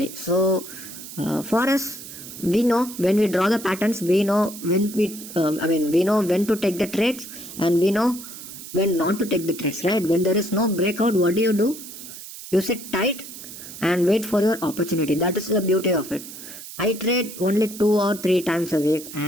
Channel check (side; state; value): right; noise; hiss, 13 dB below the sound